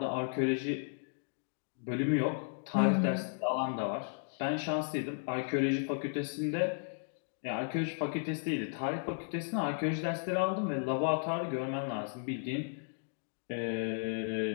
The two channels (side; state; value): right; silent; digital silence